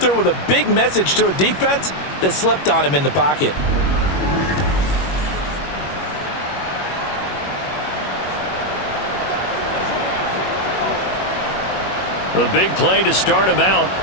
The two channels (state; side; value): late; right; 21 ms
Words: with a big message to a defense that slept on him in the pocket. The big play to start him out